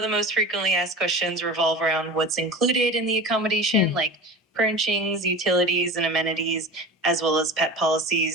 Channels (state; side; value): normal; both; correlation 0.32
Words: the most frequently asked questions revolve around what's included in the accommodation, like furnishings, utilities, and amenities, as well as pet